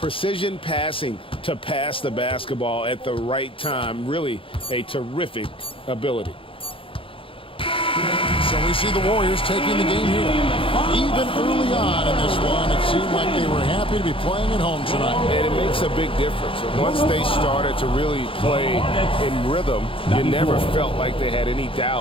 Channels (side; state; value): right; late; 0.26 ms